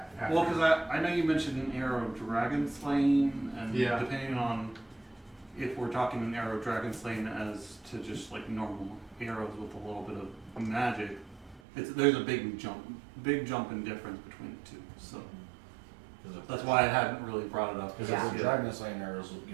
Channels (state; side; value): drops out; left; at 11.6 s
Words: after. Well, because I know you mentioned an arrow dragon slaying, and Yeah. depending on if we're talking an arrow dragon slaying as to just like normal arrows with a little bit of magic, there's a big jump in difference between the two. So that's why I hadn't really brought it up. Because Yeah. if the dragon slaying arrows will